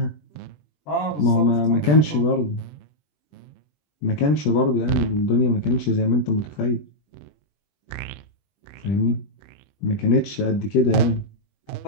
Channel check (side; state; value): right; late; 20 ms